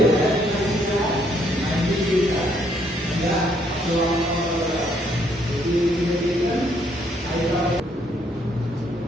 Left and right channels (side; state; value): both; normal; correlation 0.70